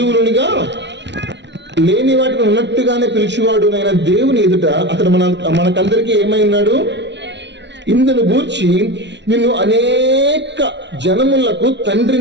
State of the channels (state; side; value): late; left; 0.51 ms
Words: లేని వాటిని ఉన్నట్టుగానే పిలిచేవాడు నైన దేవుని ఎదుట అతడు మనకందరికీ ఏమై ఉన్నాడు? ఇందును గూర్చి నిన్ను అనేక జనములకు